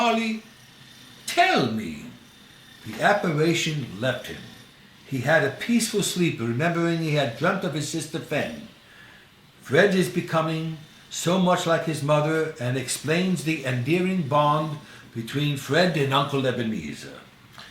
tell me. The apparition left him. He had a peaceful sleep, remembering he had dreamt of his sister Fen. Fred is becoming so much like his mother, and explains the endearing bond between Fred and Uncle Ebenezer.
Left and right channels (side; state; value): both; identical; correlation 1.00